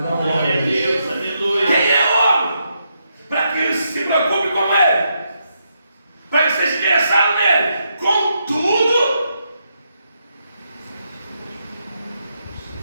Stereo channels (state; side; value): inverted; both; correlation -0.80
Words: Não, glória a Deus, aleluia. Quem é o homem? Para que ele se preocupe com ele, para que seja interessado nele. Contudo,